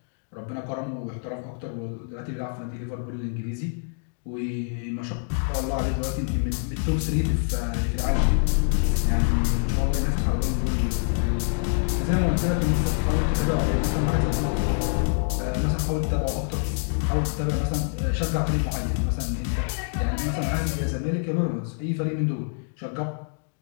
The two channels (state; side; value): silent; right; digital silence